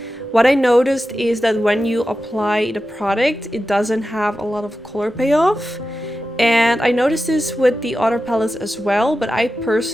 What I noticed is that when you apply the product, it doesn't have a lot of color payoff. And I noticed this with the other palettes as well, but I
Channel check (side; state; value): both; normal; correlation 0.92